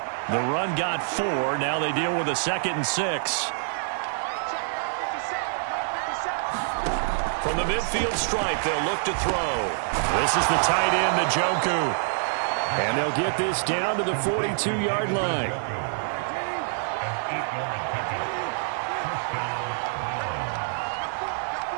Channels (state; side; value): silent; left; digital silence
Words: The run got 4. Now they deal with a 2nd and 6. From the midfield stripe, they'll look to throw. This is the tight end, Njoku. And they'll get this down to the 42-yard line.